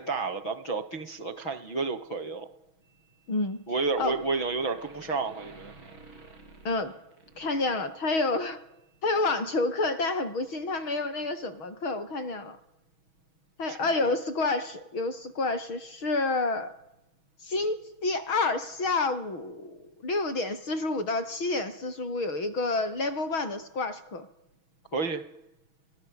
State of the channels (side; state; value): right; late; 6.2 ms